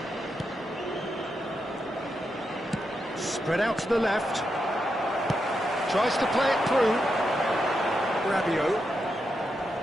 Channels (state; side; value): normal; both; correlation 0.85